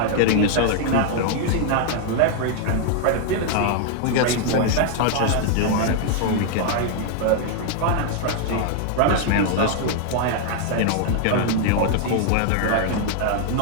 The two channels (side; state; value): both; different; correlation 0.00